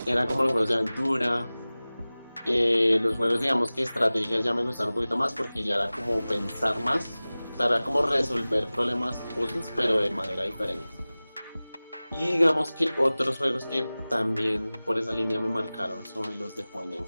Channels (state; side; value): inverted; both; correlation -0.98